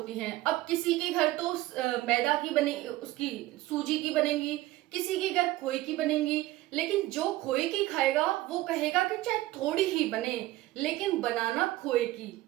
हैं। अब किसी के घर तो मैदा की बने, उसकी सूजी की बनेगी, किसी के घर खोए की बनेगी। लेकिन जो खोए की खाएगा वो कहेगा कि चाहे थोड़ी ही बने लेकिन बनाना खोए की,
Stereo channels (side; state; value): left; quieter; 17.1 dB